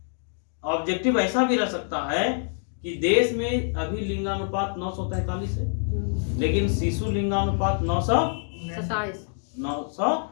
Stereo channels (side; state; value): right; silent; digital silence